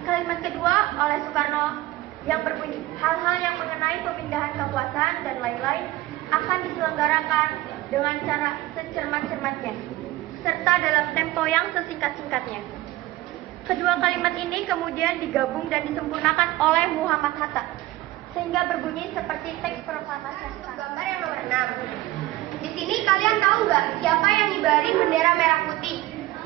Kalimat kedua oleh Soekarno yang berbunyi, hal-hal yang mengenai pemindahan kekuasaan dan lain-lain akan diselenggarakan dengan cara secermat-cermatnya, serta dalam tempo yang sesingkat-singkatnya. Kedua kalimat ini kemudian digabung dan disempurnakan oleh Muhammad Hatta, sehingga berbunyi seperti teks proklamasi. Gambar yang nomor 6. Di sini kalian tahu nggak siapa yang ngibarin bendera merah putih?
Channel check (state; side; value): quieter; left; 17.2 dB